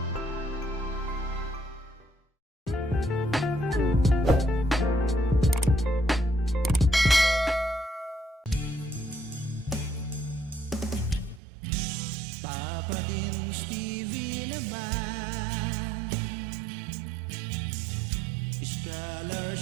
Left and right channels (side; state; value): left; drops out; at 11.4 s